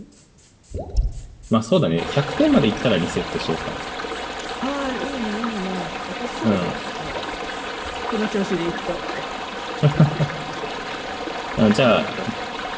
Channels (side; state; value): both; identical; correlation 1.00